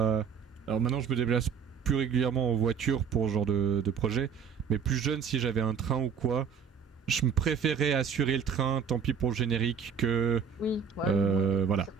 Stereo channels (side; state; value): left; quieter; 6.9 dB